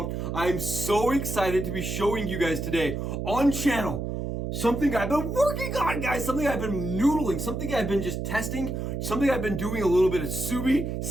I'm so excited to be showing you guys today on channel something I've been working on, guys, something I've been noodling, something I've been just testing, something I've been doing a little bit of SUBI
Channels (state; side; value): noise; right; hum, 3 dB below the sound